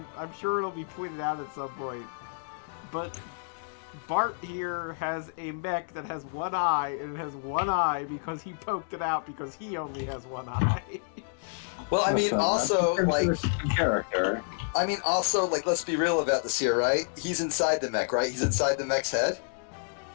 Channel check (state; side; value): silent; right; digital silence